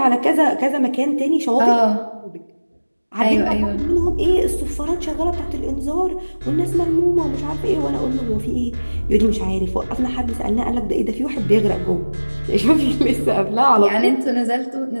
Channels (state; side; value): inverted; both; correlation -1.00